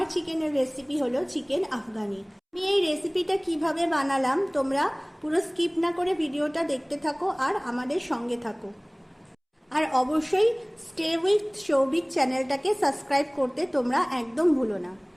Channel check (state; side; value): identical; both; correlation 1.00